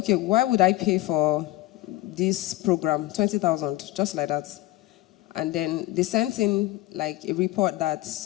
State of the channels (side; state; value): right; quieter; 17.2 dB